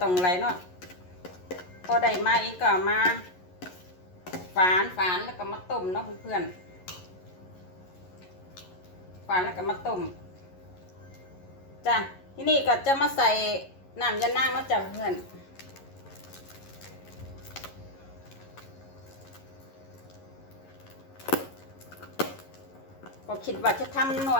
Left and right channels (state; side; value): late; right; 11 ms